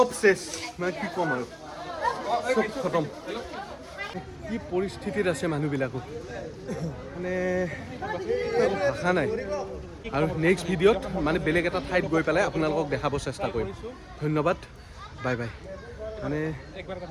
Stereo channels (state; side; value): identical; both; correlation 1.00